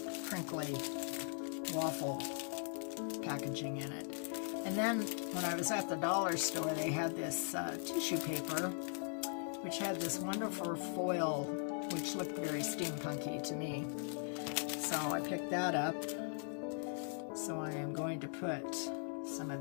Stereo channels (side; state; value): right; silent; 51 dB below the other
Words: crinkly waffle packaging in it. And then when I was at the dollar store, they had this tissue paper, which had this wonderful foil, which looked very steampunky to me. So I picked that up. So I am going to put some